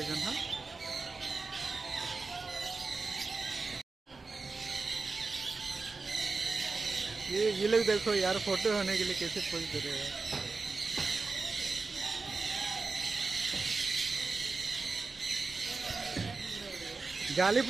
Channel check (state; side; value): quieter; left; 4.0 dB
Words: जन हां ये लोग देखो यार फोटो होने के लिए कैसे पोज दे रहे हैं जाली